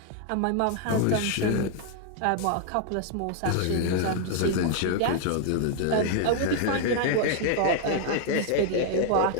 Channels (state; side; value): different; both; correlation 0.00